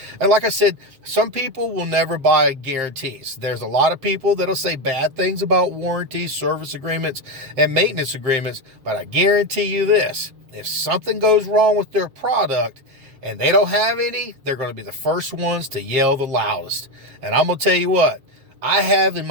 And like I said, some people will never buy guarantees. There's a lot of people that'll say bad things about warranties, service agreements, and maintenance agreements, but I guarantee you this, if something goes wrong with their product and they don't have any, they're going to be the first ones to yell the loudest. And I'm going to tell you what, I have in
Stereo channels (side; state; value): left; late; 7.6 ms